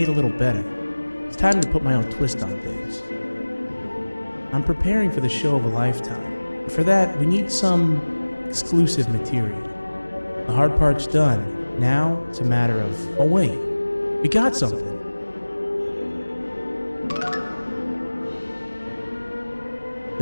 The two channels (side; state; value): both; inverted; correlation -1.00